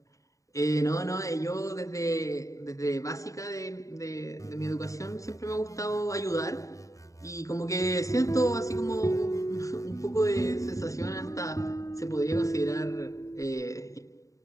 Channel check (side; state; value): right; late; 0.16 ms